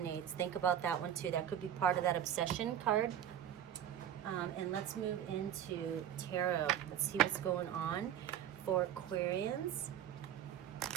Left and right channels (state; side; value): quieter; left; 10.2 dB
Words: think about that one too. That could be part of that obsession card. And let's move into tarot. Let's see what's going on for Aquarians